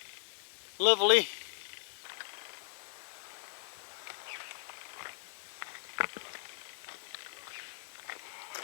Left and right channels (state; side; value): silent; right; digital silence